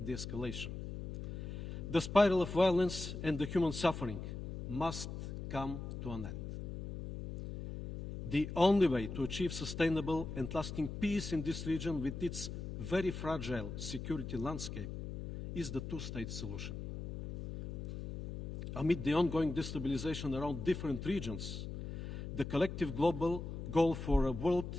de-escalation. The spiral of violence and the human suffering must come to an end. The only way to achieve sustainable and lasting peace in this region with its very fragile security landscape is the two-state solution. Amid the ongoing destabilization around different regions, the collective global goal for a world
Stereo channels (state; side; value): noise; left; hum, 7 dB below the sound